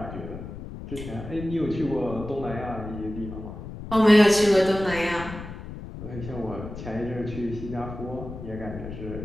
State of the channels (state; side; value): noise; left; rumble, 10 dB below the sound